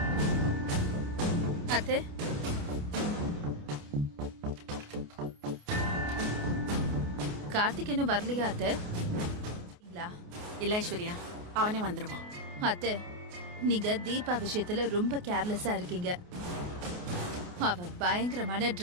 அத்தை, கார்த்திக் இன்னும் வரலையா அத்தை? இல்ல ஐஸ்வர்யா, அவனே வந்துருவான். அத்தை, நீங்க தீபா விஷயத்துல ரொம்ப கேர்லெஸ்ஸா இருக்கீங்க. அவ பயங்கரமான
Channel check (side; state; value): left; late; 28 ms